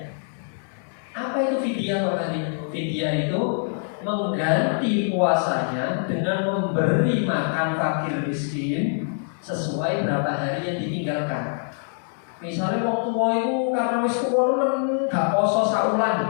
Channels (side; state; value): right; silent; 62 dB below the other